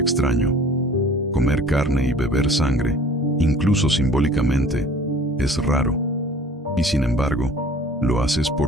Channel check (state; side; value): normal; both; correlation 0.48